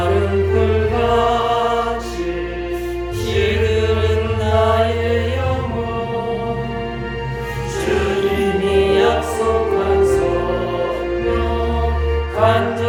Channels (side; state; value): both; identical; correlation 1.00